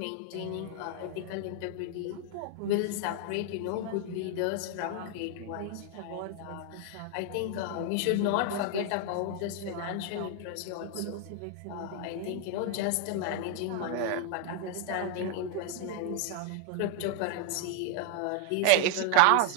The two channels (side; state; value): both; different; correlation 0.00